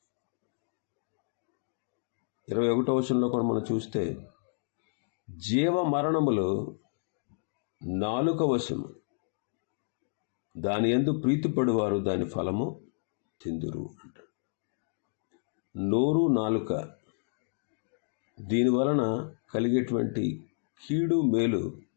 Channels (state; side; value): silent; right; digital silence